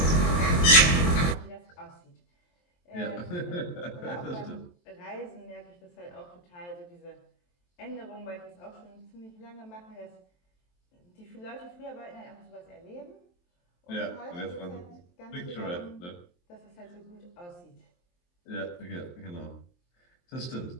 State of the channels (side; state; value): right; late; 23 ms